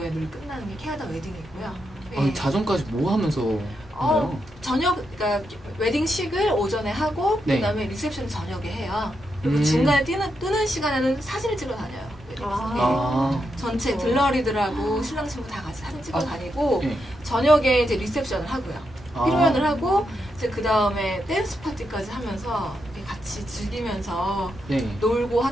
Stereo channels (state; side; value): normal; both; correlation 0.83